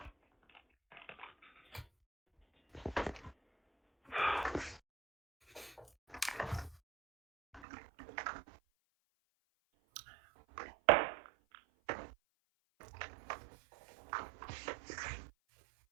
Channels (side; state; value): left; drops out; at 7.7 s